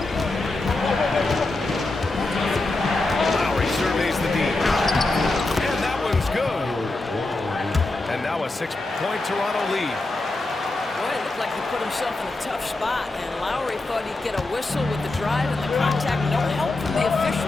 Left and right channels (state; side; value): quieter; right; 3.0 dB